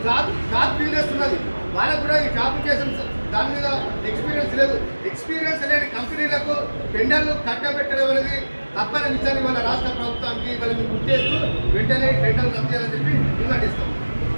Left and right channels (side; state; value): both; inverted; correlation -1.00